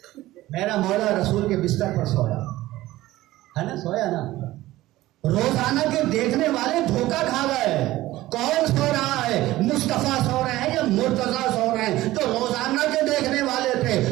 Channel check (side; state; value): left; quieter; 16.6 dB